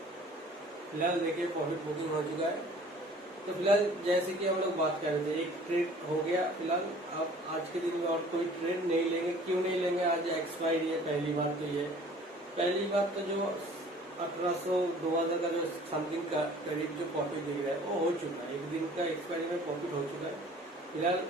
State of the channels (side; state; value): both; normal; correlation 0.50